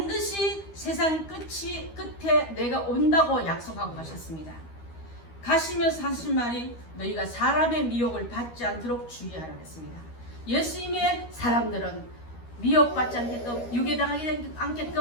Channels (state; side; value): late; right; 13 ms